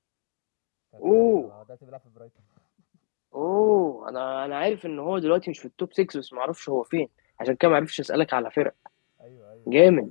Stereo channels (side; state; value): right; silent; digital silence